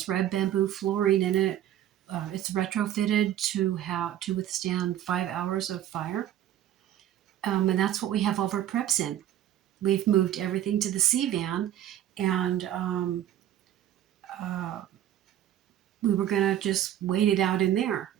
red bamboo flooring in it. It's retrofitted to withstand 5 hours of fire. And that's what we have all of our preps in. We've moved everything to the C van, and we were going to just wait it out in there.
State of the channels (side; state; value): left; quieter; 11.8 dB